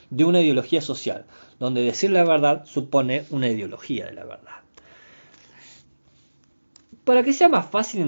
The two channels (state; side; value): inverted; both; correlation -1.00